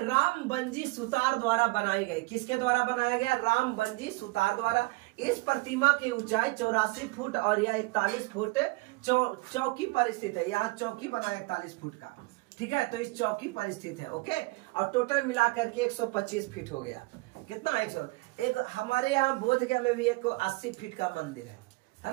रामबंजी सुतार द्वारा बनाई गई। किसके द्वारा बनाया गया? रामबंजी सुतार द्वारा। इस प्रतिमा की ऊंचाई 84 फुट और यह 41 फुट चौकी पर स्थित है। यहाँ चौकी बना है 41 फुट का, ठीक है, तो इस चौकी पर स्थित है। ओके, और टोटल मिलाकर के 125 फीट हो गया। कितना? 100। एक हमारे यहाँ बोधगया में भी एक 80 फीट का मंदिर है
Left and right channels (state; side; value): quieter; left; 24.6 dB